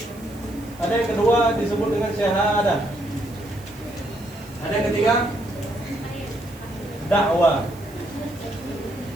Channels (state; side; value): noise; right; hiss, 23 dB below the sound